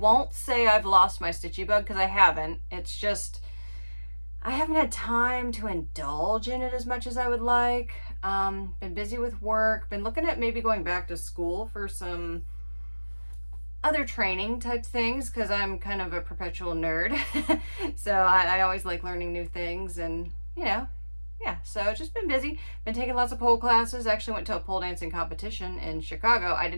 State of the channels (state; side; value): inverted; both; correlation -1.00